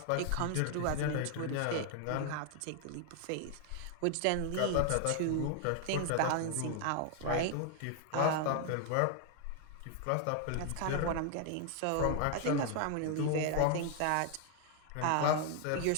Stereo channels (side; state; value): both; different; correlation 0.00